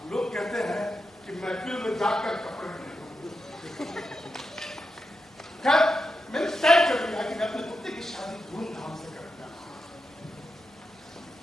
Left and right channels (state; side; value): normal; both; correlation 0.88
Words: लोग कहते हैं कि महफिल में जाकर कपड़े पहनो। खैर मैंने तय कर लिया कि मैं अपने कुत्ते की शादी धूमधाम से करूंगा,